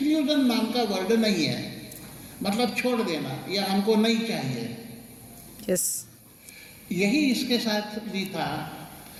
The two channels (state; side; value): identical; both; correlation 1.00